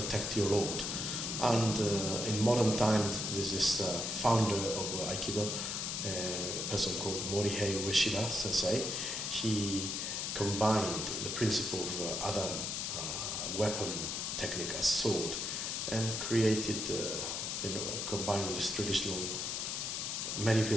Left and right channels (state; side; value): noise; left; hiss, 2 dB below the sound